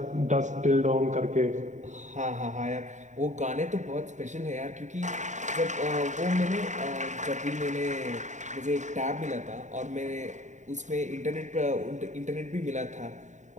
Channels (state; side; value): late; left; 0.35 ms